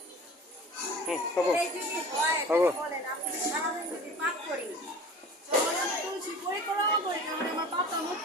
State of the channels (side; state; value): both; normal; correlation 0.40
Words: হবো এই যে হয়, হবো বলেন, আপনি যদি সারাদিন যদি পাপ করি, তাহলে আমি তুলসী পরিক্রমা করি, তাহলে আমার পাপটা